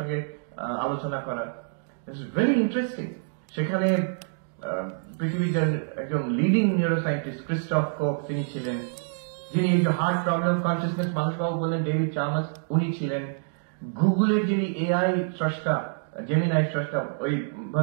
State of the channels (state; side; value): silent; left; digital silence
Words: আলোচনা করার। It's very interesting. সেখানে পৃথিবীর একজন লিডিং নিউরোসায়েন্টিস্ট ক্রিস্টফ কোক তিনি ছিলেন, যিনি এই যে হার্ট প্রবলেম কনসিয়াসনেস মানুষবাবু বললেন ডেভিড চার্মাস, উনি ছিলেন। গুগলের যিনি এআই স্রষ্টা, জেমিনাই স্রষ্টা, ওই